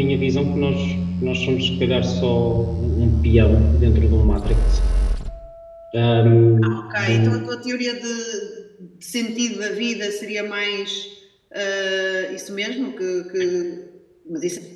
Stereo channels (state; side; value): identical; both; correlation 1.00